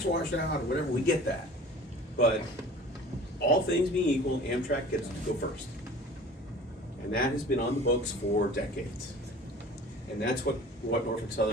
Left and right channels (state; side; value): normal; both; correlation 0.44